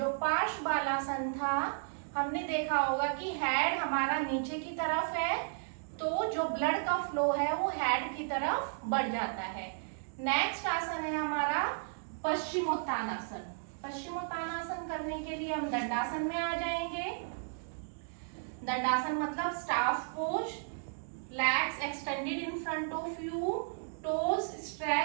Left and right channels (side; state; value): left; silent; digital silence